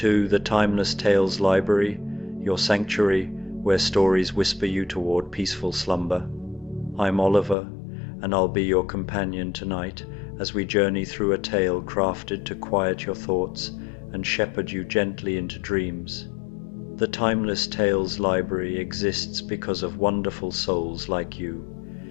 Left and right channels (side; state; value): right; drops out; at 7.6 s